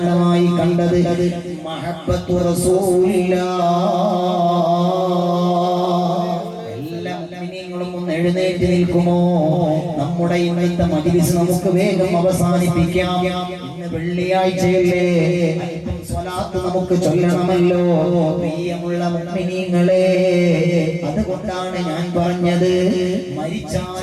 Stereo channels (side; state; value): both; identical; correlation 1.00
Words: കണ്ടത് മഹബ്ബത്തു റസൂലില്ലാഹ്. എല്ലാ മുഅ്മിനീങ്ങളും ഒന്ന് എഴുന്നേറ്റ് നിൽക്കുമോ? നമ്മുടെ ഇന്നത്തെ മജ്‌ലിസ് നമുക്ക് വേഗം അവസാനിപ്പിക്കാം. ഇന്ന് വെള്ളിയാഴ്ചയല്ലേ, അല്പം സ്വലാത്ത് നമുക്ക് ചൊല്ലണമല്ലോ പ്രിയമുള്ള മുഅ്മിനീങ്ങളെ. അതുകൊണ്ടാണ് ഞാൻ പറഞ്ഞത്,